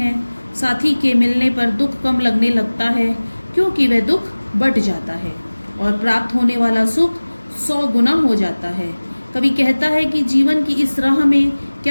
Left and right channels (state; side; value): inverted; both; correlation -1.00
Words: साथी के मिलने पर दुख कम लगने लगता है, क्योंकि वह दुख बढ़ जाता है और प्राप्त होने वाला सुख 100 गुना हो जाता है। कवि कहता है कि जीवन की इस राह में